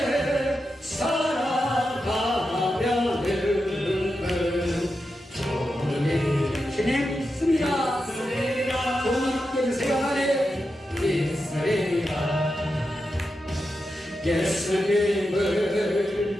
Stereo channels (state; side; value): normal; both; correlation 0.89